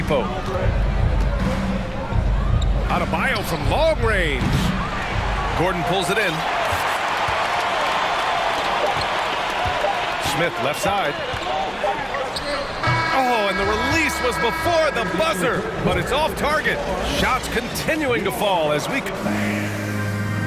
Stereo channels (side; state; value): both; identical; correlation 1.00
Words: Adebayo from long range. Gordon pulls it in. Smith left side. Oh, and the release was before the buzzer, but it's off target. Shots continuing to fall as we...